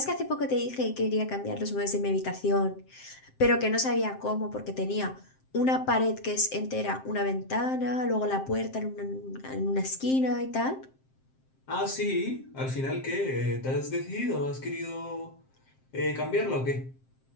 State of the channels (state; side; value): late; right; 7.6 ms